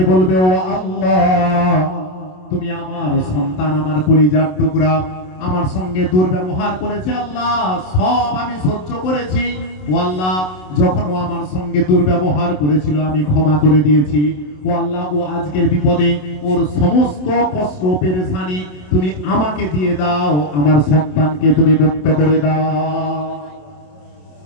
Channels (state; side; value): late; right; 27 ms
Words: বলবে, ও আল্লাহ, তুমি আমার সন্তান, আমার কলিজার টুকরা, আমার সঙ্গে দুর্ব্যবহার করেছে, আল্লাহ সব আমি সহ্য করেছি, ও আল্লাহ যখন ও আমার সঙ্গে দুর্ব্যবহার করেছিল আমি ক্ষমা করে দিয়েছি, ও আল্লাহ ও আজকের বিপদে ওর সমস্ত কষ্ট পেরেশানি তুমি আমাকে দিয়ে দাও, আমার সন্তানকে তুমি মুক্ত করে দাও।